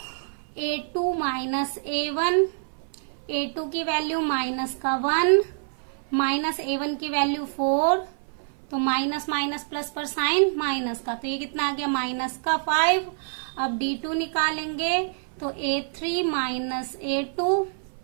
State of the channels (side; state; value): left; silent; 57 dB below the other